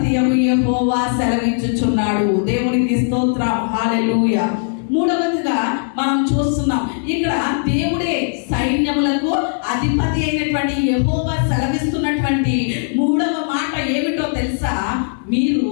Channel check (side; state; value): right; silent; digital silence